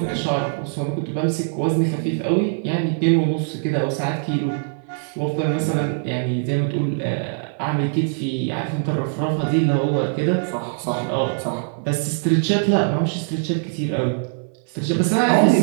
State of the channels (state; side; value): silent; left; digital silence